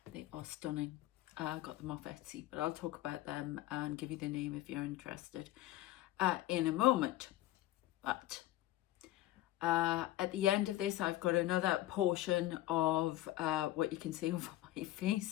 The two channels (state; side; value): quieter; right; 15.4 dB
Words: They are stunning. I got them off Etsy, but I'll talk about them and give you the name if you're interested in a moment. But at the end of this, I've got another portion of what you can see over my